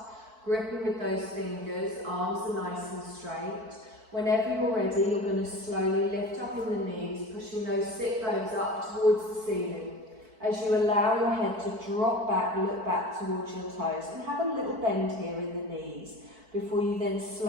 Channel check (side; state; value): left; late; 4.5 ms